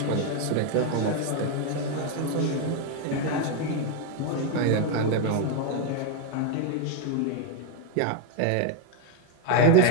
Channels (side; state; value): both; different; correlation 0.01